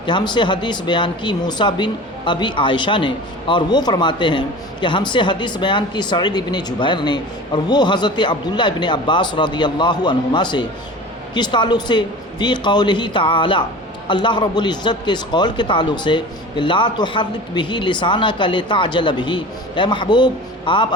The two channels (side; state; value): both; normal; correlation 0.37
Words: کہ ہم سے حدیث بیان کی موسیٰ بن ابی عائشہ نے، اور وہ فرماتے ہیں کہ ہم سے حدیث بیان کی سعید ابن جبیر نے، اور وہ حضرت عبداللہ ابن عباس رضی اللہ عنہما سے۔ کس تعلق سے؟ فی قولہ تعالی، اللہ رب العزت کے اس قول کے تعلق سے کہ لا تحرک بہ لسانک لتعجل بہ، اے محبوب آپ